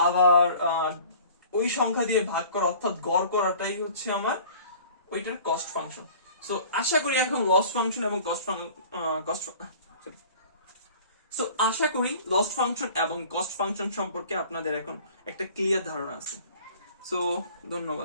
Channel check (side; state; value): both; inverted; correlation -0.47